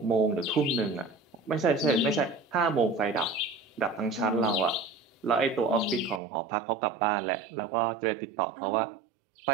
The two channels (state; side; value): drops out; left; at 6.2 s